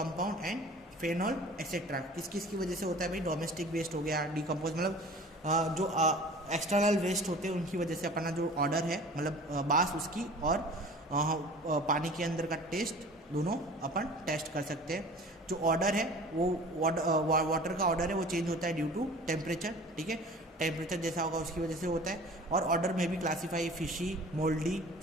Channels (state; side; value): normal; both; correlation 0.43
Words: and phenol etcetera. किस किस की वजह से होता है भाई? डोमेस्टिक वेस्ट हो गया, डिकम्पोज मतलब जो एक्सटर्नल वेस्ट होते हैं उनकी वजह से अपना जो ऑर्डर है मतलब बास उसकी और पानी के अंदर का टेस्ट दोनों अपन टेस्ट कर सकते हैं। जो ऑर्डर है वो वाटर का ऑर्डर है वो चेंज होता है ड्यू टू टेम्परेचर। ठीक है, टेम्परेचर जैसा होगा उसकी वजह से होता है। और ऑर्डर में भी classify fishy, mouldy,